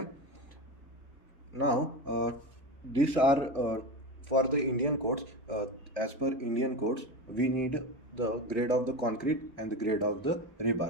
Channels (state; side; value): normal; both; correlation 0.23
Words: now these are for the Indian codes. As per Indian codes, we need the grade of the concrete and the grade of the